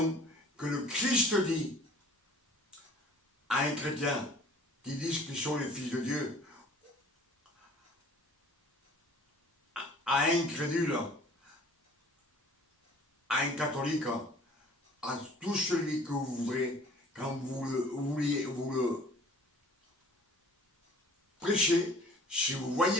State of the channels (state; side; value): normal; both; correlation 0.49